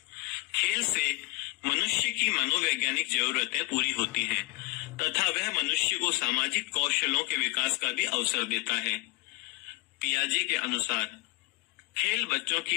खेल से मनुष्य की मनोवैज्ञानिक जरूरतें पूरी होती हैं तथा वह मनुष्य को सामाजिक कौशलों के विकास का भी अवसर देता है। पियाजे के अनुसार खेल बच्चों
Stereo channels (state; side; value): quieter; right; 20.7 dB